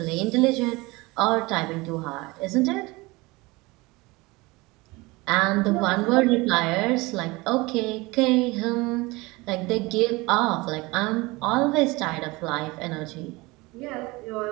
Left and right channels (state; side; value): quieter; left; 23.2 dB